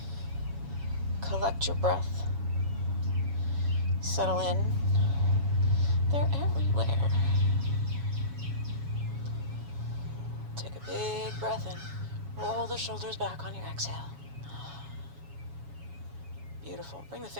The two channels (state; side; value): late; left; 7.2 ms